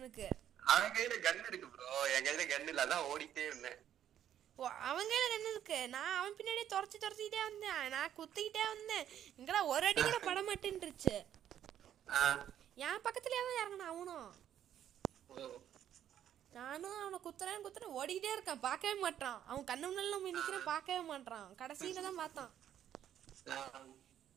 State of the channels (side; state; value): left; quieter; 10.5 dB